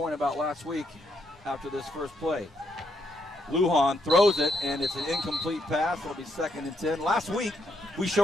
about last week after this first play. Lujan throws it, and it's an incomplete pass. It'll be 2nd and 10. Last week, we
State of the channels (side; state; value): both; normal; correlation 0.76